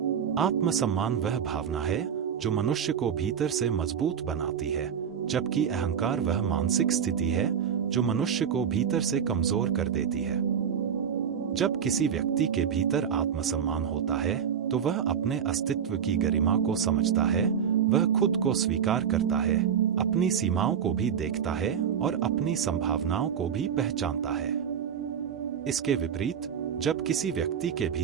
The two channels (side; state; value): left; quieter; 7.9 dB